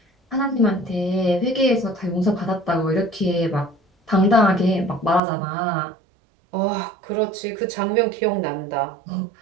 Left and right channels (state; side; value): drops out; left; at 5.2 s